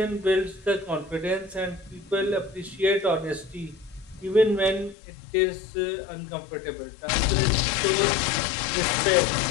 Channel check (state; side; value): drops out; right; at 5.0 s